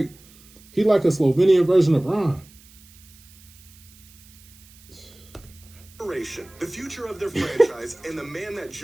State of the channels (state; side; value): noise; right; hiss, 25 dB below the sound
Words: he like a Slovenian version of Bron. The future of their franchise and the man that